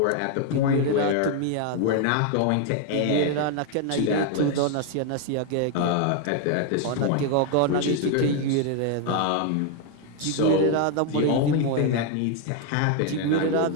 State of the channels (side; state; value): both; different; correlation 0.01